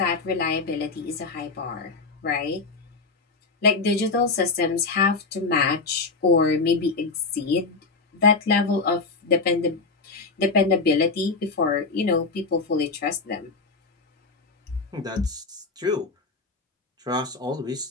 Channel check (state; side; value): quieter; right; 4.1 dB